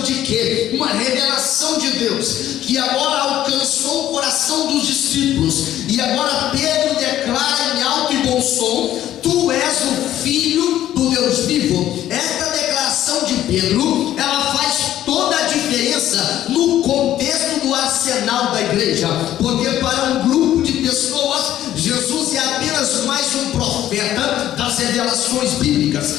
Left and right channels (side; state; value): right; quieter; 12.4 dB